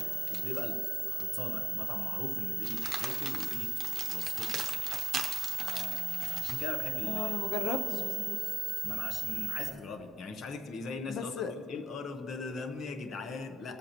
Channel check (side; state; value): both; normal; correlation 0.79